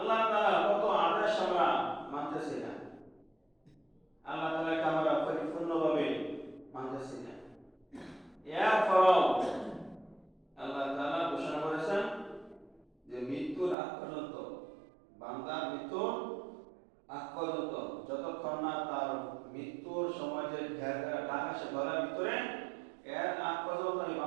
তাআলা কত আদেশ আমরা মানতেছি না, আল্লাহ তাআলাকে আমরা পরিপূর্ণভাবে মানতেছি না। এরপরও আল্লাহ তাআলা ঘোষণা করেছেন যে মৃত্যুর আগ পর্যন্ত, বান্দার মৃত্যুর আগ পর্যন্ত, যতক্ষণ না তার মৃত্যুর সময় যে ঘের ঘেরা ডাক আসে গলার ভিতরে, এর আগ পর্যন্ত আমি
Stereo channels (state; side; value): drops out; left; at 13.8 s